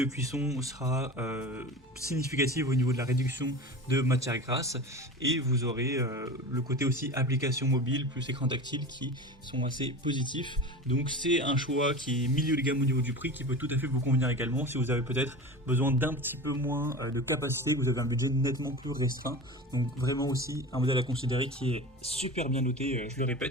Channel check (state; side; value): normal; both; correlation 0.32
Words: cuisson sera significative au niveau de la réduction de matière grasse et vous aurez le côté aussi application mobile plus écran tactile qui sont assez positifs. Donc c'est un choix qui est milieu de gamme au niveau du prix qui peut tout à fait vous convenir également si vous avez peut-être besoin d'un petit peu moins de capacité, que vous avez un budget nettement plus restreint. Donc vraiment aussi un modèle à considérer qui est super bien noté, je le